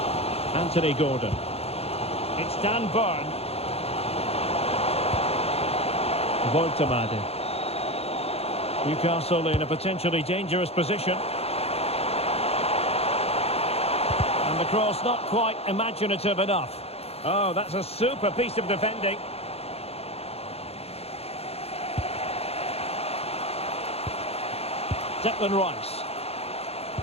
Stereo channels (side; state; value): right; late; 0.29 ms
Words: Anthony Gordon. It's Dan Burn. Woltemade. Newcastle in a potentially dangerous position. And the cross not quite imaginative enough. Oh, that's a super piece of defending. Declan Rice.